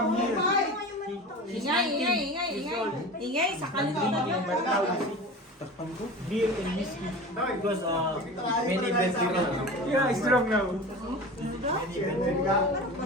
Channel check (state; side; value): normal; both; correlation 0.33